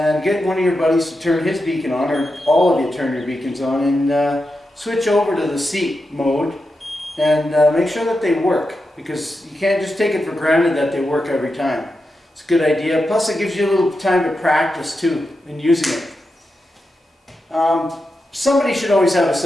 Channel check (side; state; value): both; normal; correlation 0.88